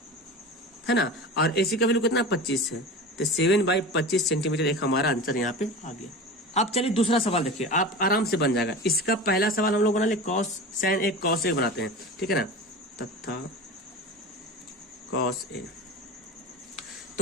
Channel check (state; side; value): normal; both; correlation 0.31